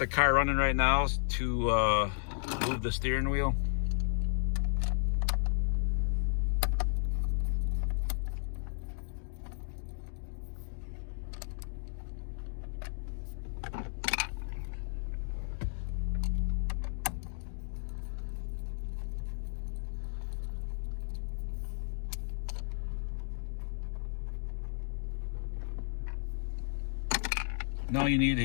car running right now to move the steering wheel. And all you need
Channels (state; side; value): silent; right; digital silence